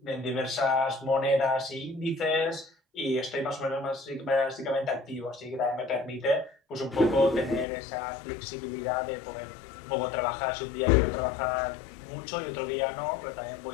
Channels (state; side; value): drops out; right; at 7.7 s